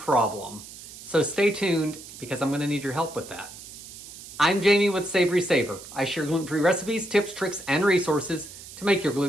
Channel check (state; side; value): noise; right; hiss, 15 dB below the sound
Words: So stay tuned because I'm gonna need your help with that. I'm Jamie with SavorySaver. I share gluten-free recipes, tips, tricks, and resources to make your